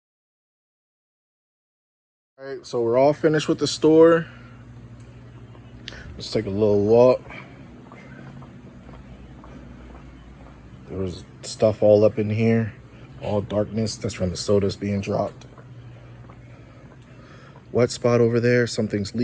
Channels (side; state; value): both; identical; correlation 1.00